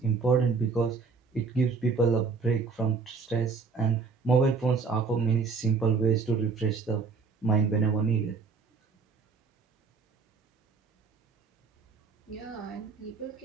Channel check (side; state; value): left; quieter; 4.9 dB